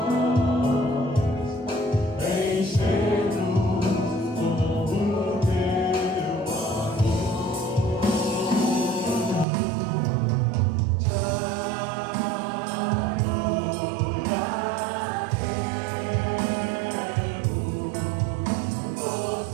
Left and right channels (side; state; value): left; drops out; at 9.5 s